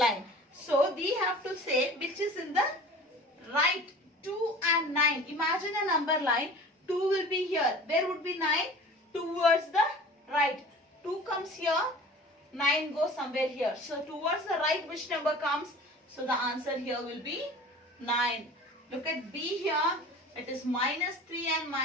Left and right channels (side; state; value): both; normal; correlation 0.42